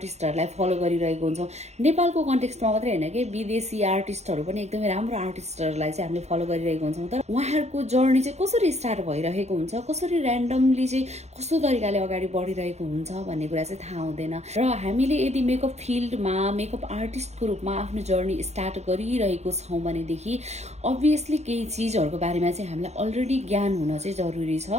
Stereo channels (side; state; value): left; late; 0.32 ms